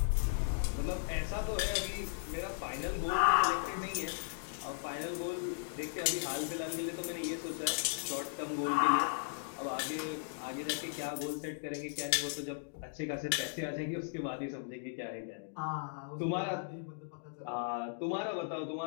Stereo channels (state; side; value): silent; right; digital silence